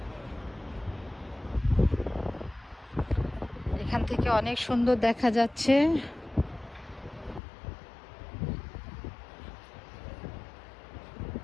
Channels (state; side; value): drops out; right; at 7.4 s